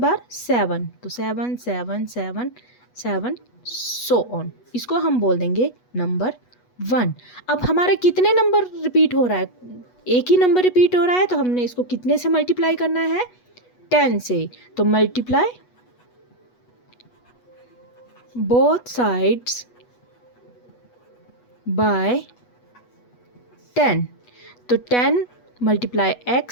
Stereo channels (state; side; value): late; right; 8.2 ms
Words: 7, तो 7 7 7 7 सो ऑन। इसको हम बोल देंगे नंबर 1। अब हमारे कितने नंबर रिपीट हो रहा है, एक ही नंबर रिपीट हो रहा है, तो हमने इसको कितने से मल्टीप्लाई करना है 10 से। तो मल्टीप्लाई बोथ साइड्स बाय 10, तो 10 multiply